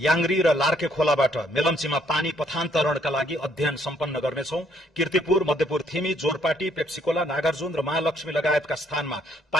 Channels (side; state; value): both; normal; correlation 0.68